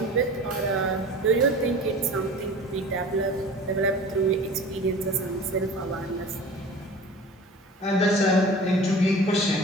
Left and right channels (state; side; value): normal; both; correlation 0.40